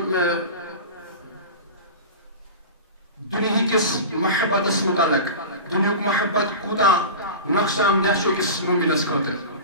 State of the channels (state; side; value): inverted; both; correlation -0.30